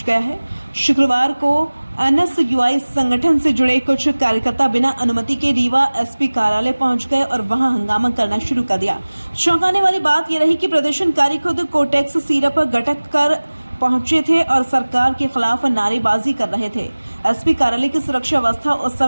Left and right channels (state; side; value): inverted; both; correlation -1.00